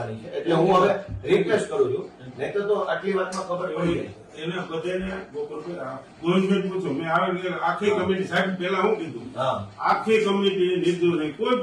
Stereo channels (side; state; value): both; identical; correlation 1.00